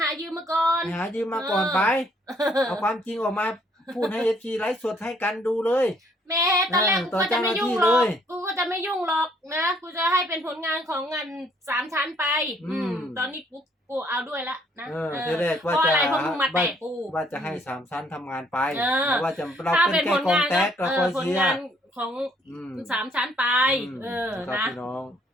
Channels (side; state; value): both; normal; correlation 0.65